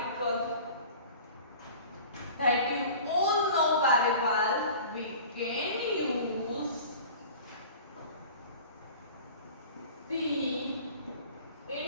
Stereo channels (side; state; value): both; inverted; correlation -0.42